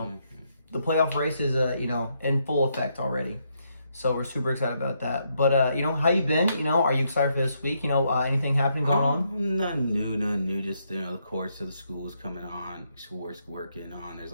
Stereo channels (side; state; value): both; inverted; correlation -0.77